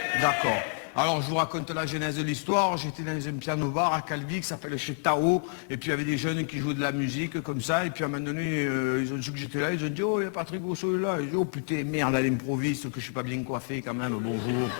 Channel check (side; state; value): right; silent; digital silence